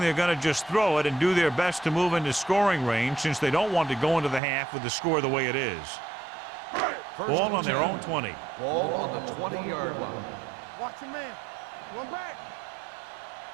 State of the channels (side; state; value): left; drops out; at 4.4 s